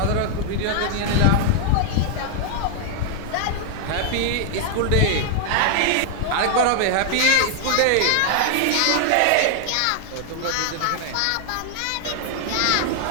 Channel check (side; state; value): both; different; correlation 0.00